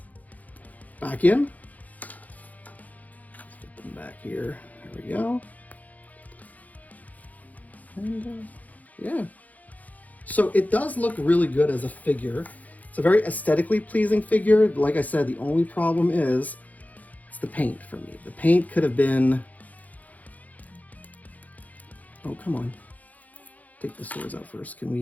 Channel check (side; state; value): right; late; 0.077 ms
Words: back in. Let's get them back here. There we go. And yeah. So it does look really good as a figure. It's a very aesthetically pleasing figure. Like I said, the only problem is it's the paint for me. The paint could have been... Oh, come on. Take the swords out first. Can